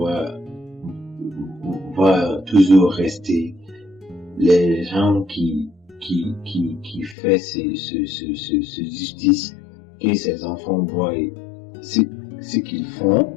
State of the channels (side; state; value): right; drops out; at 7.2 s